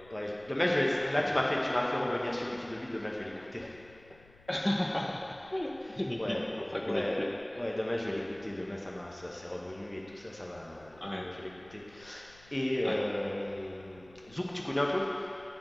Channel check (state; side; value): noise; left; rumble, 25 dB below the sound